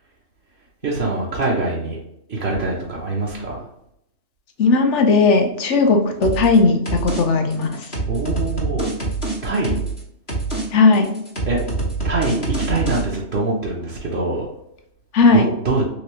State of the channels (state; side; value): late; right; 3.0 ms